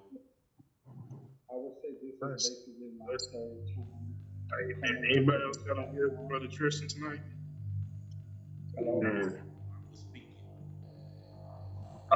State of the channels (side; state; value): both; identical; correlation 1.00